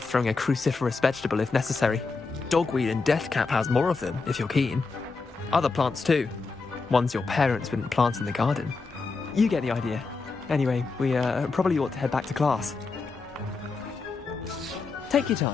throwing a cruciferous vegetable if necessary. Dogweed and deathcap has more of them, if you're keen. Other plants too. Ones your parents wouldn't plant in the garden. You get the idea. Anyway, we probably ought to head back to class. Take your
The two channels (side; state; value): right; quieter; 4.2 dB